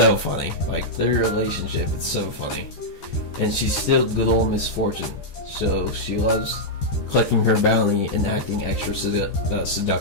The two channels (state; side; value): late; right; 13 ms